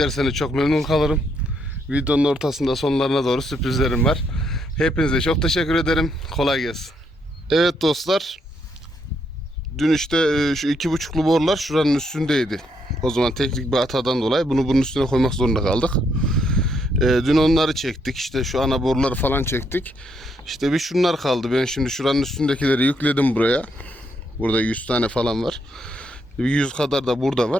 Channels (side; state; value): both; normal; correlation 0.75